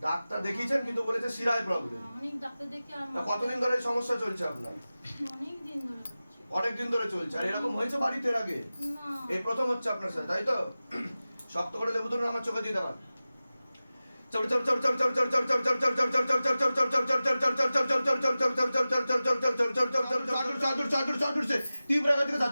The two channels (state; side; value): inverted; both; correlation -0.96